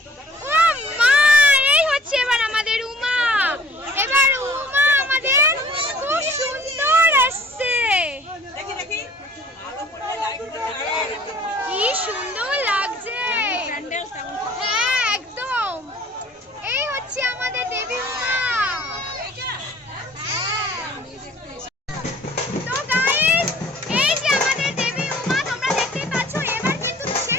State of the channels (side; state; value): both; normal; correlation 0.52